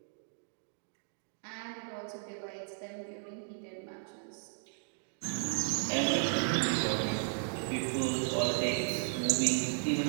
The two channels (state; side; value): silent; left; digital silence